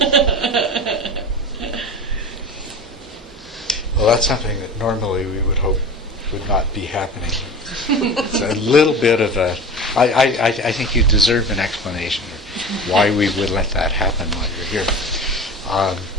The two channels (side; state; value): both; normal; correlation 0.33